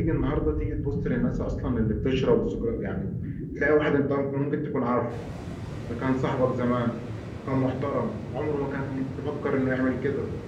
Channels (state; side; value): identical; both; correlation 1.00